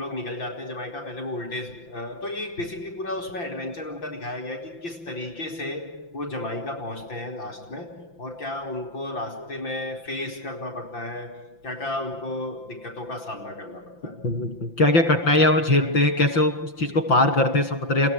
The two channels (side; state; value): right; late; 5.9 ms